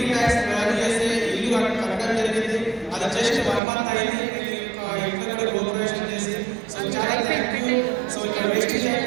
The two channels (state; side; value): drops out; left; at 3.6 s